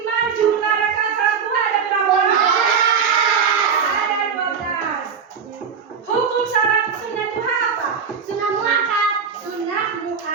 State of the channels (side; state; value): left; quieter; 6.6 dB